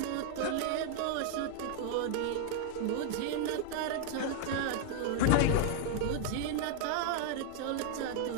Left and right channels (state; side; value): different; both; correlation 0.00